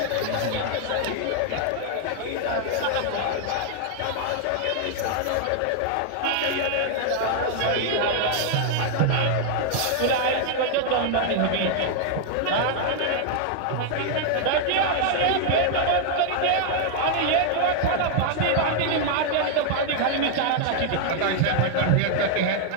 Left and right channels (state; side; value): different; both; correlation 0.00